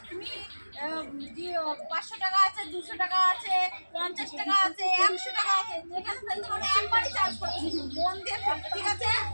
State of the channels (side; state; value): both; inverted; correlation -1.00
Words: তুমি 500 টাকা আছে, 200 টাকা আছে, 50 টাকা আছে, 100 টাকা আছে, যেখানে ফেলতে পারো একবারই চান্স পাবে। মন দিয়ে ফেলবে, ঠিক আছে?